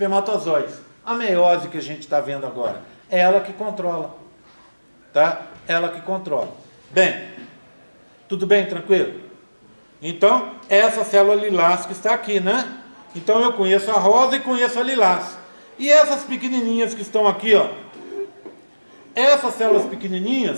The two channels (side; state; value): both; inverted; correlation -1.00